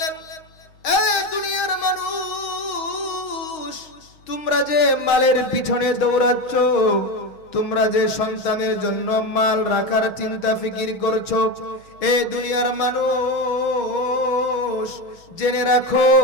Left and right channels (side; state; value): right; late; 6.4 ms